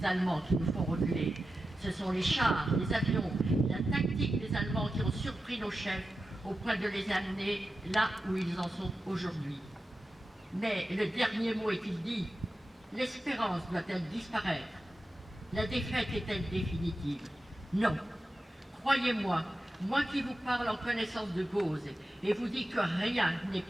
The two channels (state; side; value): normal; both; correlation 0.92